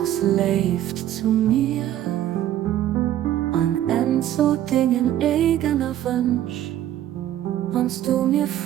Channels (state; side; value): quieter; left; 12.3 dB